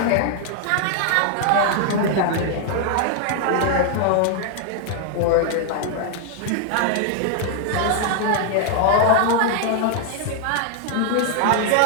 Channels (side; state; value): both; different; correlation 0.00